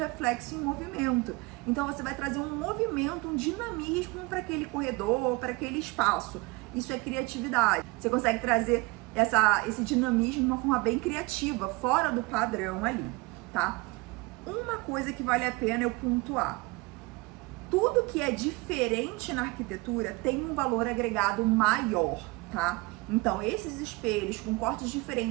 em movimento. Então você vai trazer um movimento, um dinamismo para aquele corredor, para aquele espaço. Isso é criatividade. Você consegue trazer esse dinamismo de uma forma bem criativa, fora do padrão ali, tá? Uma coisa que vale a pena eu pontuar. Tudo que é diferente na arquitetura tem um valor agregado maior, tá? Então, esses espelhos com cortes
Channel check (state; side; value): quieter; left; 24.8 dB